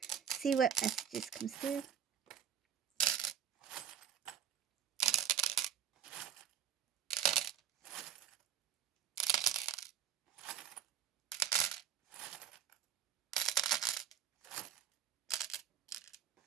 See what messages comes through.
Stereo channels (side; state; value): left; quieter; 9.3 dB